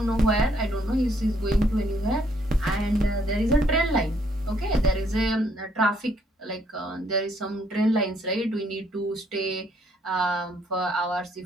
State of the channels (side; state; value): both; normal; correlation 0.69